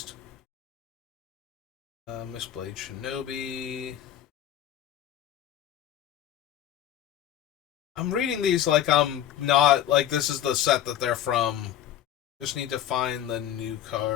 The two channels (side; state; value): right; quieter; 11.0 dB